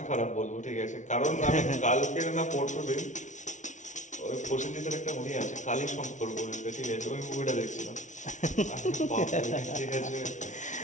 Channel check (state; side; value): late; right; 0.36 ms